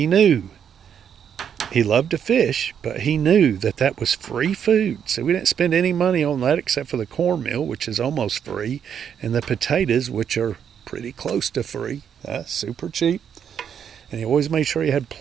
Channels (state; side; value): quieter; left; 8.2 dB